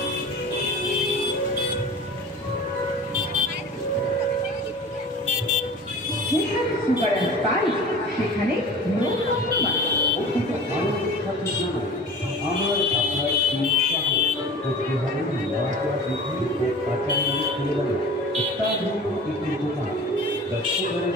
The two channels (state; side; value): normal; both; correlation 0.39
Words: and spice সেখানে আমার আপনার উৎসাহ করতে হবে লজ্জা বৃদ্ধি ও আচার্য পরিবারে অত্যাধুনিক একটি দোকান the super and